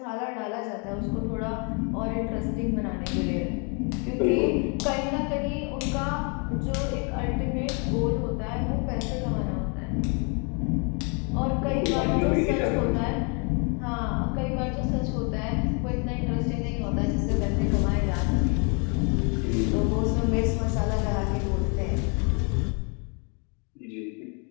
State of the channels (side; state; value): right; quieter; 36.0 dB